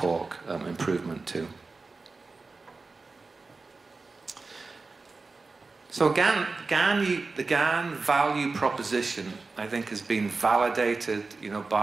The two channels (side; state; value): left; quieter; 3.9 dB